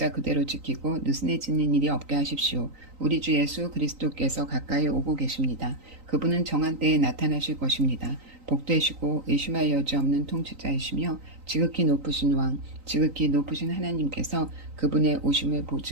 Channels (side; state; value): left; late; 3.9 ms